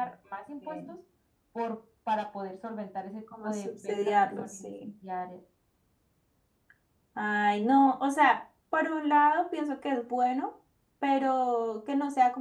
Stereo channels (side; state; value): both; identical; correlation 1.00